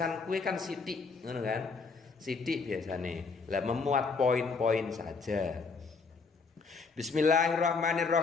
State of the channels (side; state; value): right; quieter; 4.6 dB